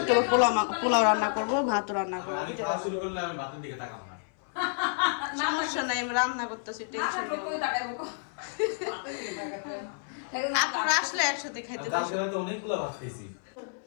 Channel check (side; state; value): right; silent; 57 dB below the other